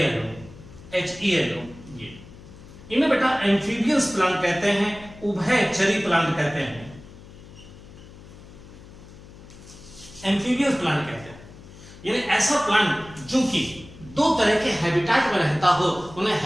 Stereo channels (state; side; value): noise; left; hum, 19 dB below the sound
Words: ये इन्हें बेटा एम्फीबियस प्लांट कहते हैं, उभयचरी प्लांट कहते हैं, एम्फीबियस प्लांट कहते हैं। यानी ऐसा प्लांट जो कि 2 तरह के हैबिटेट में रहता हो, उन्हें